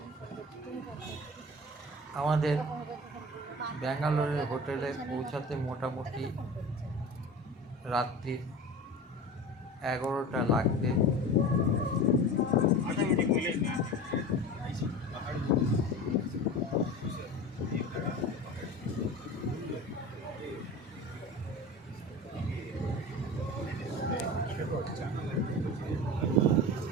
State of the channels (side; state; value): both; normal; correlation 0.33